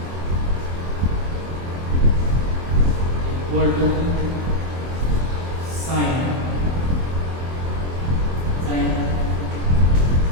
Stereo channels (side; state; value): left; late; 24 ms